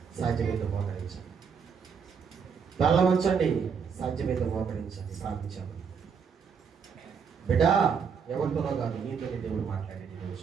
సాధ్యమైతే మోకరించండి. తల వంచండి, సాధ్యమైతే మోకరించండి. ప్రార్థించాలి. బిడ్డ, ఎవరితోనో కాదు, నీతోనే దేవుడు మాట్లాడాడు.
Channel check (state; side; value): quieter; left; 6.4 dB